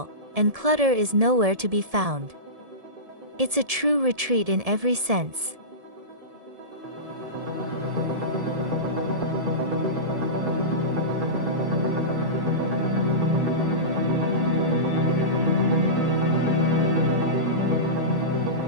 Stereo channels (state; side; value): late; left; 1.7 ms